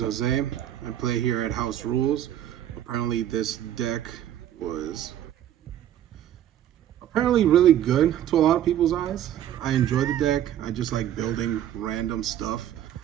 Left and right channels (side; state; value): left; quieter; 11.3 dB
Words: Jose. I play here at House Rules. Apparently, this deck was really good to a lot of people's eyes. I enjoy the deck. I just like building random stuff